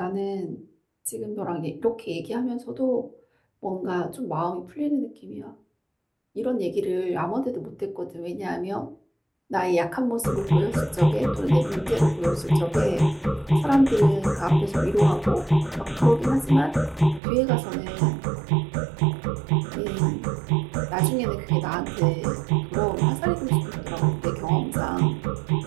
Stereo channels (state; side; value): drops out; left; at 17.2 s